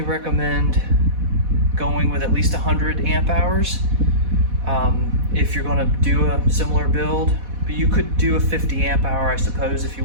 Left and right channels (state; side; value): late; left; 4.1 ms